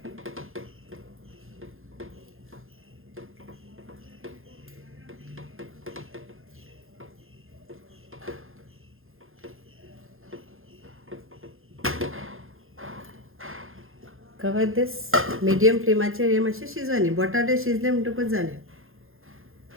Cover this medium फ्लेमाचेर. हे मातशें शिजोनी. बटाटे शिजले म्हणटकूच जालें.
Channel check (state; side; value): late; left; 0.60 ms